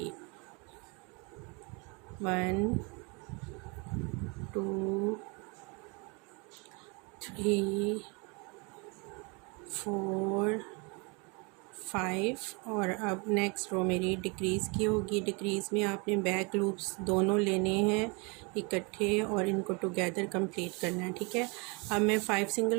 1 2 3 4 5 और अब नेक्स्ट रो मेरी डिक्रीज़ की होगी। डिक्रीज़ में आपने बैक लूप्स दोनों लेने हैं इकट्ठे और इनको टुगेदर कंप्लीट करना है, ठीक है। अब मैं 5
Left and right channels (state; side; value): quieter; left; 30.8 dB